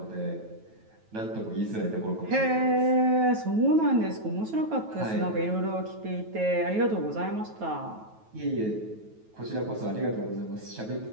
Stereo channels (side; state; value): left; late; 9.2 ms